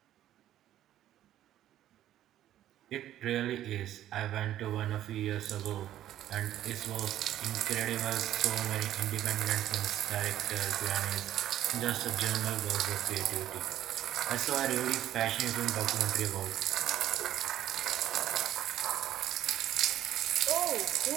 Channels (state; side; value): quieter; left; 12.4 dB